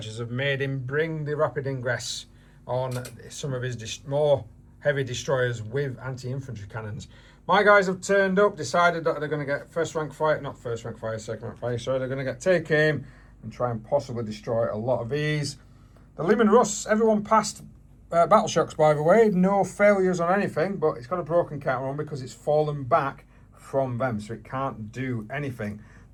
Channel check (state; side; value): identical; both; correlation 1.00